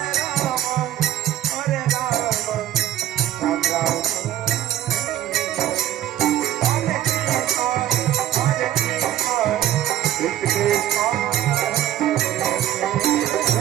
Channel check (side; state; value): left; quieter; 12.4 dB